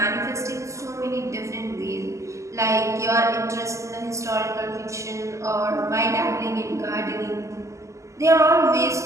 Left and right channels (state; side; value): late; left; 0.15 ms